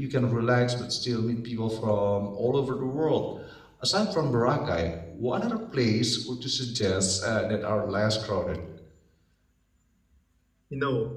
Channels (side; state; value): both; identical; correlation 1.00